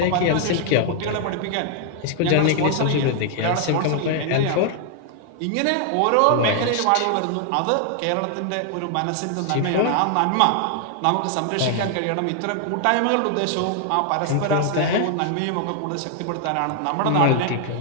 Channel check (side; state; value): both; different; correlation 0.00